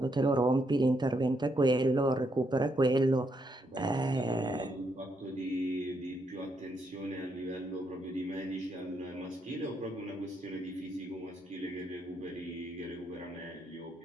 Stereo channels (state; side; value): normal; both; correlation 0.78